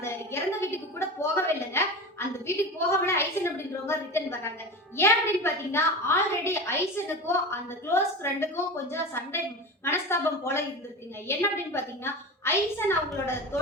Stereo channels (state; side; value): normal; both; correlation 0.28